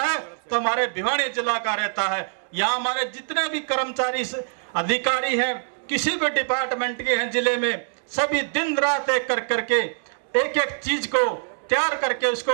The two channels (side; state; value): left; silent; digital silence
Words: तो हमारे भिवानी जिला का रहता है। यहाँ हमारे जितने भी कर्मचारी अधिकारी हैं, किसी भी डिपार्टमेंट के हैं जिले में, सभी दिन रात एक करके एक एक चीज को तैयार करके उसको,